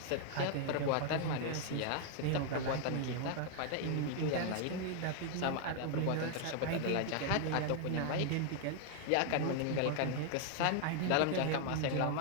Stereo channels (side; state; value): both; different; correlation 0.00